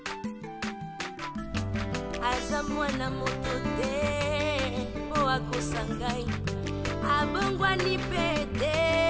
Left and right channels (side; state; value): both; identical; correlation 1.00